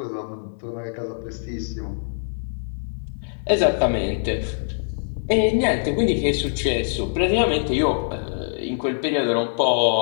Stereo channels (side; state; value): right; silent; digital silence